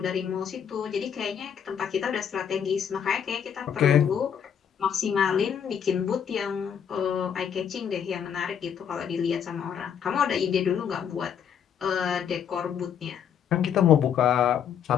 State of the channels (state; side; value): quieter; right; 8.2 dB